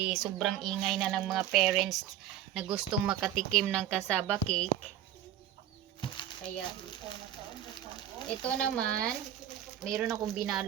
sobrang ingay na ng mga parents na gustong makatikim ng cassava cake. Kaya ito naman, mayroon akong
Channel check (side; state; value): left; quieter; 11.3 dB